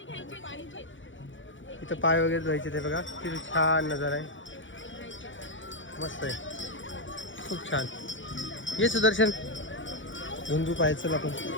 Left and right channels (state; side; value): late; right; 0.56 ms